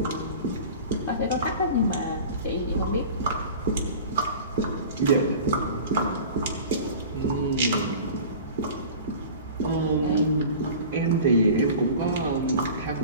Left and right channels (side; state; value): both; inverted; correlation -0.39